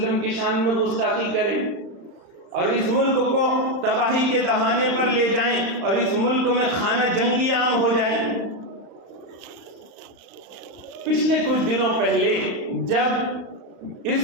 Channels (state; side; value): late; left; 35 ms